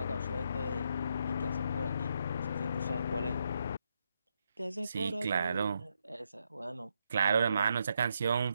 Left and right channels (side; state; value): both; inverted; correlation -0.79